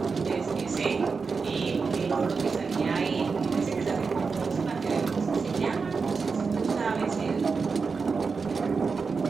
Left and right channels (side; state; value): left; quieter; 4.9 dB